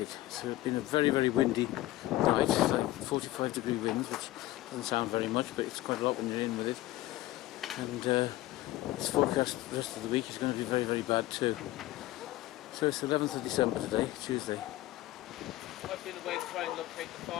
So it's been a very, very windy night. It's like 45-degree winds, which doesn't sound very much, but it's quite a lot when you're in with it. And it's forecast the rest of the week is going to be very, very bad too. So it's the 11th of December today, Tuesday. I've been away to try and locate the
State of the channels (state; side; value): quieter; right; 16.8 dB